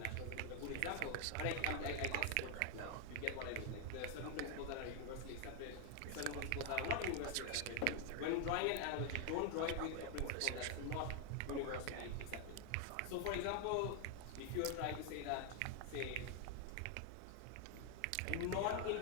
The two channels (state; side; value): different; both; correlation 0.00